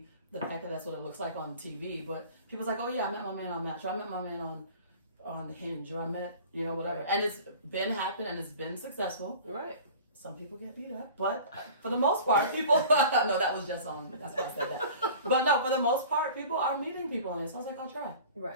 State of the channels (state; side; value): inverted; both; correlation -0.41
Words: the fact that that's what it looks like on TV, but people's like, oh yeah, I met my man on Match, or I met my man on Hinge, or I met, whatever. Right. And it's been happened and it's been successful. Right. Some people get beat up, but for the most part, people, no, that was just on, that's why I said that. But no, for the most part, people are meeting people on it. So I was like, I'll try.